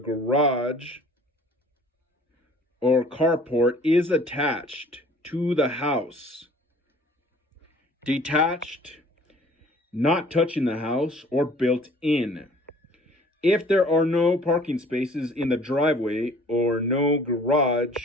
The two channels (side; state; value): both; normal; correlation 0.52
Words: garage or carport is attached to the house, detached, not touching the house, or built in. If there are no parking spaces in the driveway or no